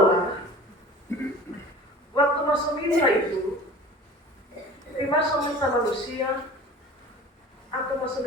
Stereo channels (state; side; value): normal; both; correlation 0.40